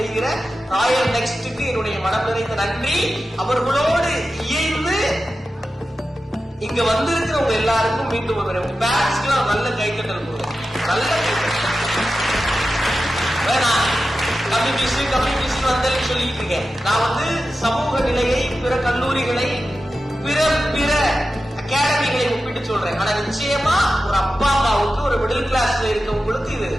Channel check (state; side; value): normal; both; correlation 0.93